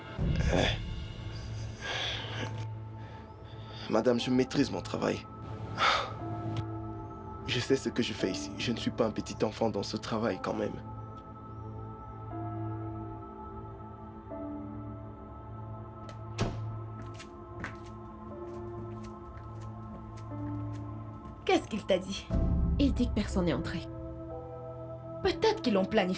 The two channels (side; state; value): both; identical; correlation 1.00